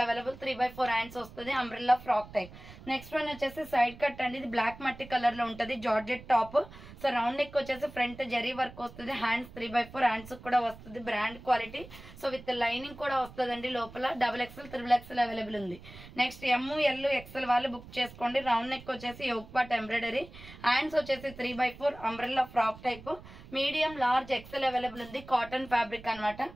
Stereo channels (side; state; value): right; noise; rumble, 17 dB below the sound